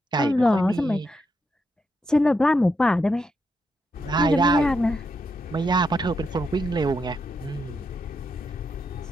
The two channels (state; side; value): normal; both; correlation 0.82